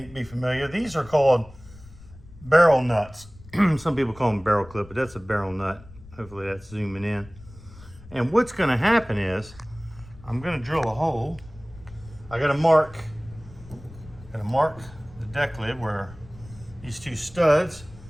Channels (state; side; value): noise; left; rumble, 20 dB below the sound